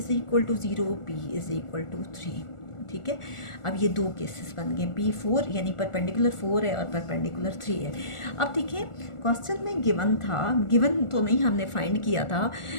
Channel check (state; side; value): late; right; 1.4 ms